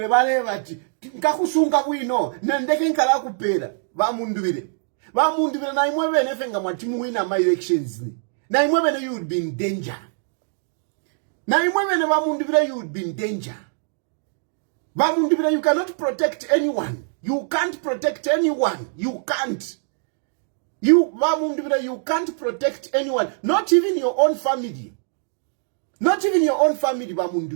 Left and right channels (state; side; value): silent; left; digital silence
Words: bale bati. Nkakusunga kuino, nendeke nkala kupera. Ba mundure na imwebe nefenga mwatimu wina my elections ni. Na imwebe you would be in danger. You would be in danger. You cannot protect anyone. You can't protect anyone. You can't. You can't protect anyone. Not even your own family.